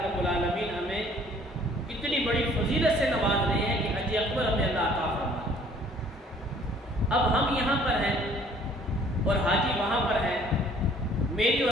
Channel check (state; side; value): normal; both; correlation 0.57